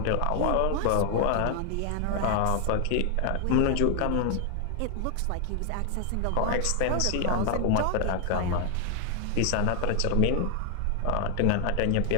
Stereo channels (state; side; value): different; both; correlation 0.00